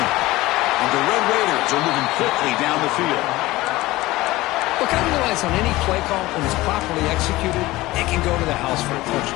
And the Red Raiders are moving quickly down the field. Look, I realize on any play call, when it's properly executed, it can go to the house for a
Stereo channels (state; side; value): quieter; right; 18.7 dB